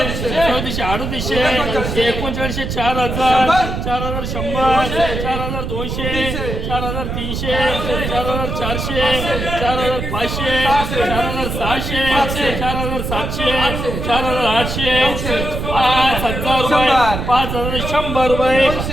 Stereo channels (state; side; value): noise; right; rumble, 4 dB below the sound